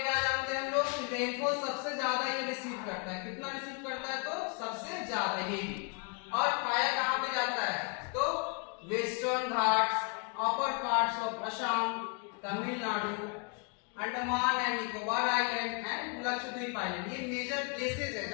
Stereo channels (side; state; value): right; quieter; 36.5 dB